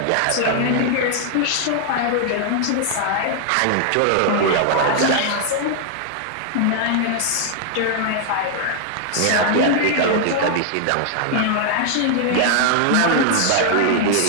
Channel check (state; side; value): different; both; correlation 0.00